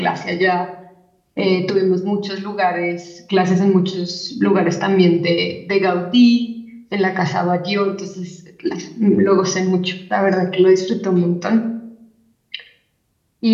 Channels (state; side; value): identical; both; correlation 1.00